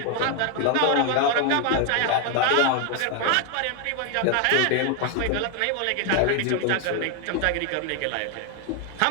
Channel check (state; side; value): different; both; correlation 0.01